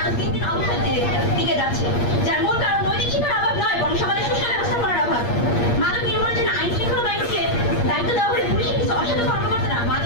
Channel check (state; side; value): late; right; 8.5 ms